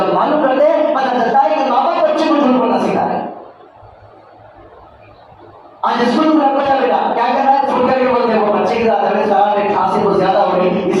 معلوم کرتے ہیں پتہ چلتا ہے کہ ماں باپ بچے کو جھوٹ بولنا سکھا رہے ہیں۔ آج اسکول میں بچہ بیٹا کیا کر رہا ہے؟ چھوڑ کر کے بولتے ہیں وہ بچے کی کھانسی بہت زیادہ ہو رہی اس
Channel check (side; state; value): both; identical; correlation 1.00